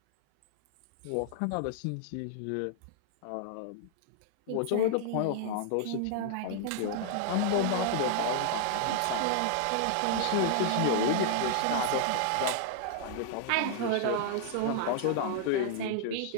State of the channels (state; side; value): different; both; correlation 0.00